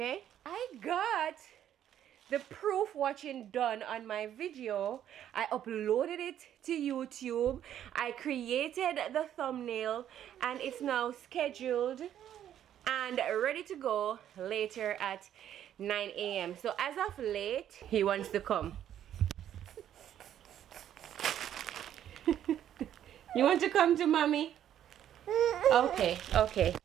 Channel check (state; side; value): quieter; left; 10.7 dB